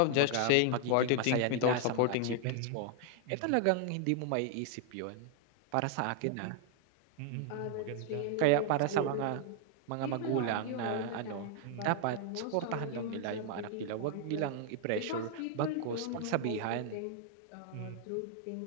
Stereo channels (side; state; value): both; different; correlation 0.00